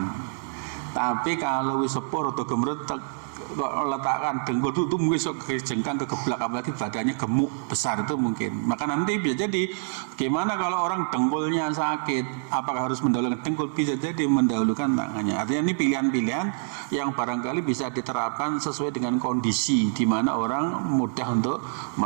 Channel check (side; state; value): left; silent; digital silence